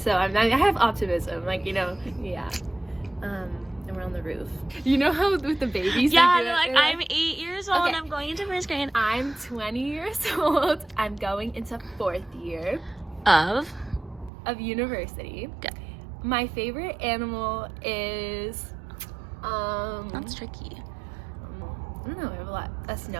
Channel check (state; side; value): drops out; left; at 14.3 s